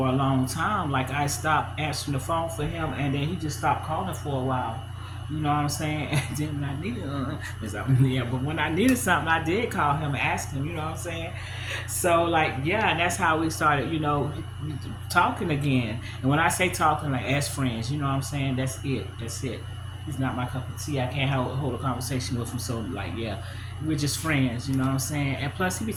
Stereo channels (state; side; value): identical; both; correlation 1.00